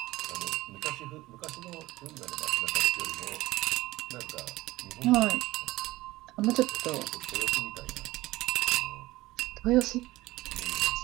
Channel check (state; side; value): quieter; left; 18.3 dB